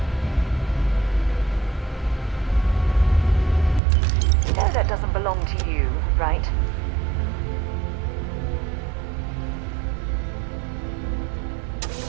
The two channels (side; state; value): left; drops out; at 3.8 s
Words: You know that doesn't belong to you, right?